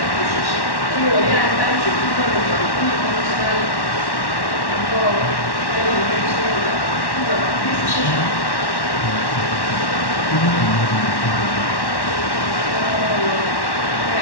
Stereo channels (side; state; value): right; late; 1.1 ms